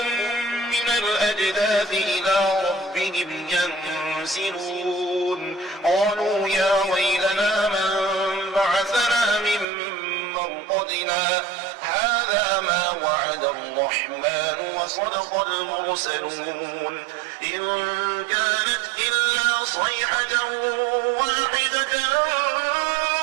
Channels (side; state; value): left; drops out; at 9.7 s